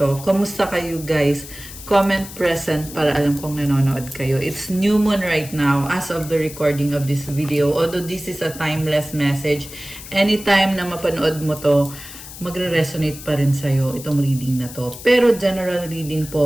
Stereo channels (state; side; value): noise; left; hiss, 14 dB below the sound